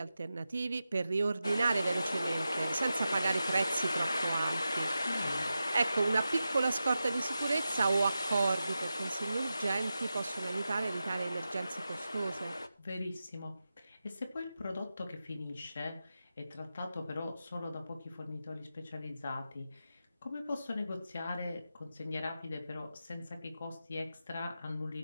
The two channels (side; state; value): both; inverted; correlation -0.92